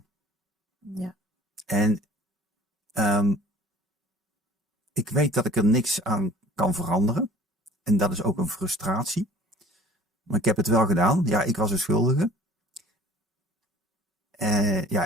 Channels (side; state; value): both; normal; correlation 0.48